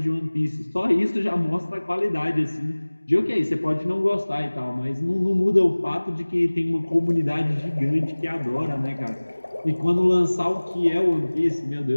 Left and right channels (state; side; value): inverted; both; correlation -1.00